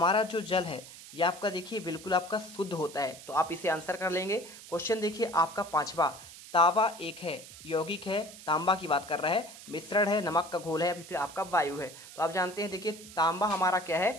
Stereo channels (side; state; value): right; noise; hiss, 16 dB below the sound